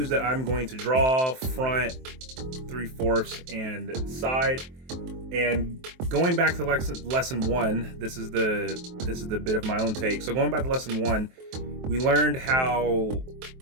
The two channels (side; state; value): left; late; 23 ms